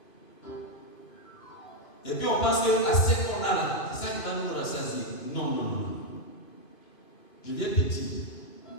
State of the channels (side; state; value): right; late; 2.5 ms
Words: Et puis on pense que l'assiette qu'on a là, c'est ça qui va nous rassasier. Non, non, non, non. Je viens te dire